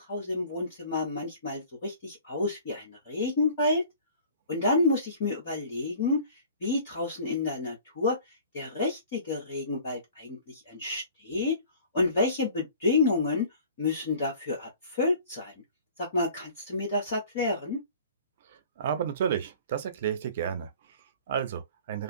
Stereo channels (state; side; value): inverted; both; correlation -0.47